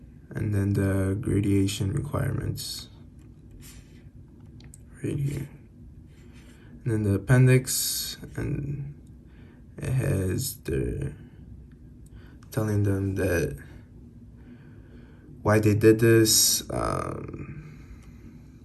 And then the gradation requirements right here. And then the appendix, and it has the telling them that why they did this,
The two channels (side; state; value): both; identical; correlation 1.00